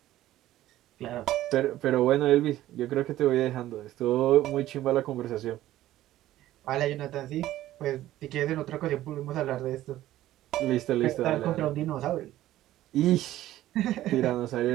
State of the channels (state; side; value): quieter; left; 14.4 dB